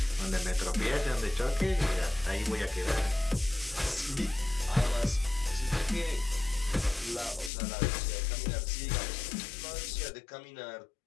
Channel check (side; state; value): right; drops out; at 7.5 s